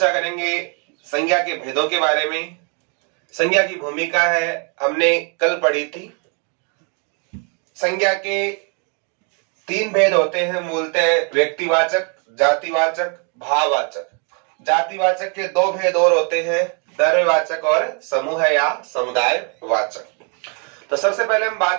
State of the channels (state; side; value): quieter; left; 37.5 dB